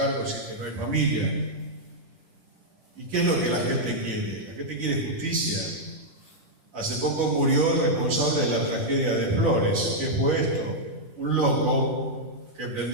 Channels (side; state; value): left; late; 10 ms